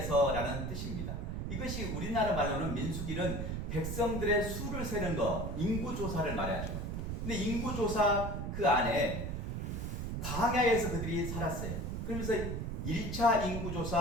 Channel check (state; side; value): noise; right; rumble, 3 dB below the sound